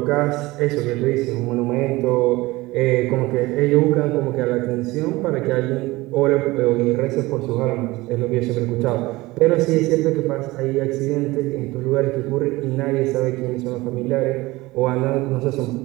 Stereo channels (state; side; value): quieter; left; 20.4 dB